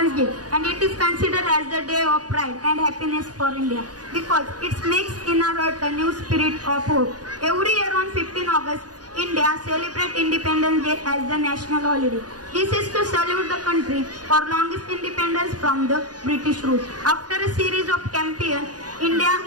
Day and it is considered as the day of pride and happiness for India because it makes in our heart a new spirit of hope. Every year on 15 August, India celebrates Independence Day as the national holiday. This is to salute the country for longest independence from the British rule. After a series of campaigns, India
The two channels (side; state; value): left; late; 0.68 ms